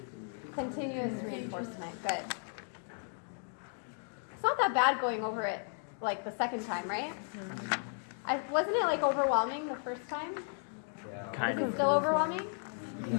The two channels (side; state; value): right; silent; 55 dB below the other